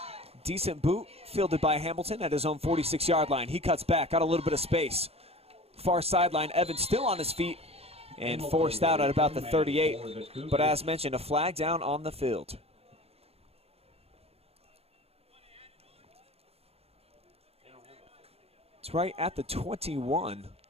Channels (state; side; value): late; left; 0.29 ms